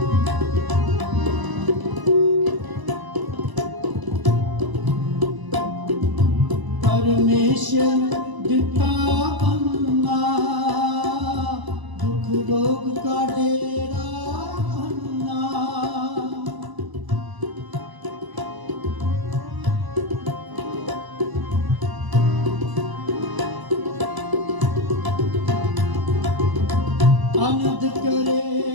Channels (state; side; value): late; left; 1.0 ms